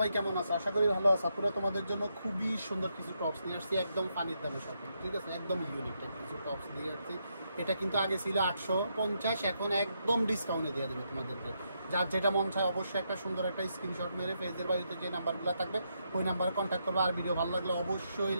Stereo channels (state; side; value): inverted; both; correlation -0.80